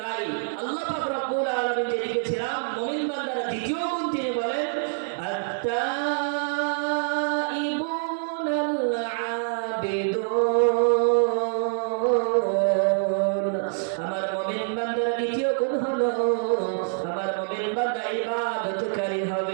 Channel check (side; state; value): left; silent; digital silence